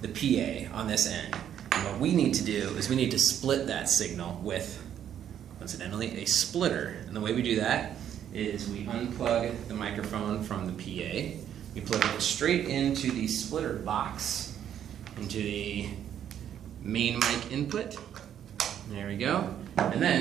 the PA on this end. And what we need to do is we need to split that signal with, incidentally, a splitter. And the way we do that is we unplug the microphone from the PA, we plug it straight into the splitter box, into the main mic input. There we go. And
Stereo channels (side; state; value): left; quieter; 9.9 dB